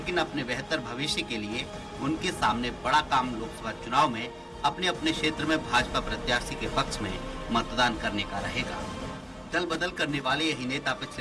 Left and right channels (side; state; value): both; identical; correlation 1.00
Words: अपने बेहतर भविष्य के लिए उनके सामने बड़ा काम लोकसभा चुनाव में अपने अपने क्षेत्र में भाजपा प्रत्याशी के पक्ष में मतदान करने का रहेगा। दल बदल करने वाले यही नेता